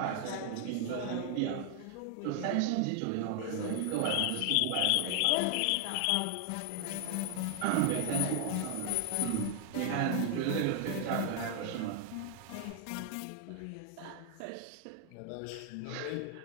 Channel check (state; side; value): different; both; correlation 0.00